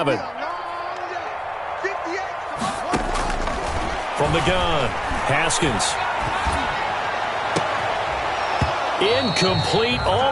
From the gun, Haskins. Incomplete,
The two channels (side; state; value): both; identical; correlation 1.00